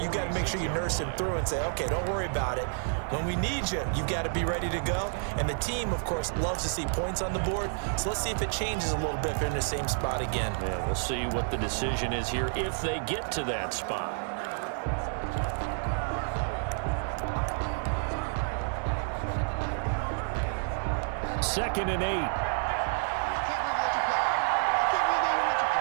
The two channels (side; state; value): left; silent; 58 dB below the other